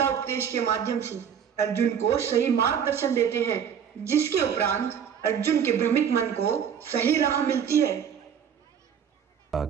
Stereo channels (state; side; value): quieter; left; 8.0 dB